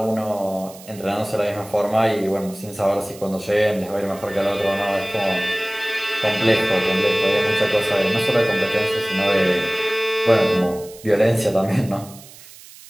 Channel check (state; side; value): noise; right; hiss, 20 dB below the sound